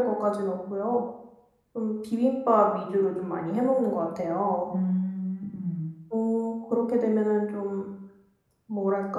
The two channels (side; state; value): both; identical; correlation 1.00